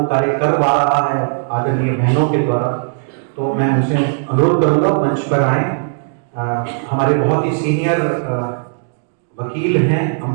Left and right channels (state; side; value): silent; left; digital silence